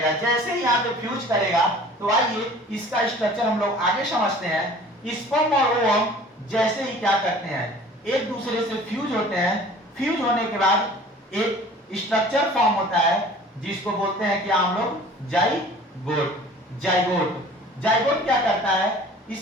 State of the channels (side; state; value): both; normal; correlation 0.47